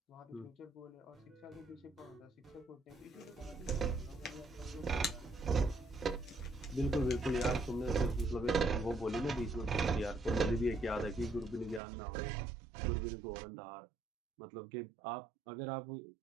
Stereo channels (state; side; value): drops out; left; at 11.8 s